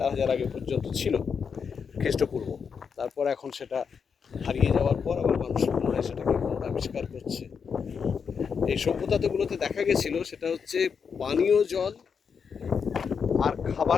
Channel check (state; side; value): quieter; right; 6.3 dB